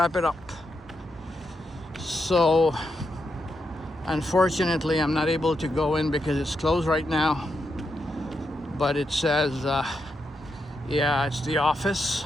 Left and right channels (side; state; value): both; normal; correlation 0.84